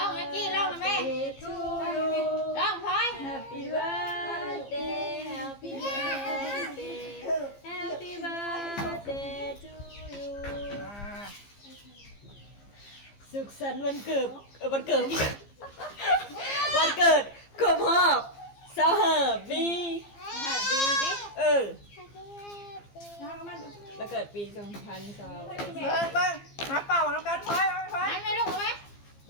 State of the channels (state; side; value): late; right; 15 ms